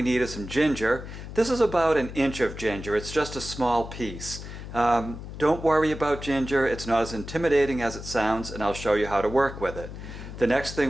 need is some ginger. This is about an inch of ginger. It's just a small piece. Don't worry about ginger. It's not as intimidating as it sounds, and I'll show you how to work with it. The next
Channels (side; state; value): left; noise; hum, 11 dB below the sound